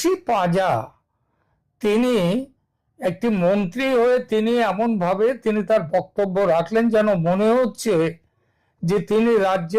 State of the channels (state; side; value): identical; both; correlation 1.00